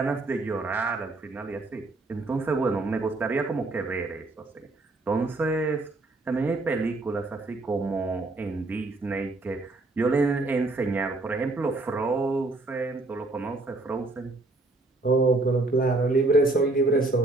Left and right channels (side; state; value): left; quieter; 3.0 dB